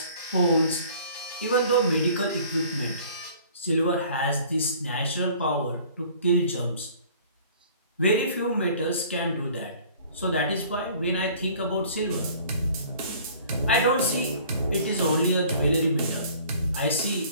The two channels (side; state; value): both; inverted; correlation -0.51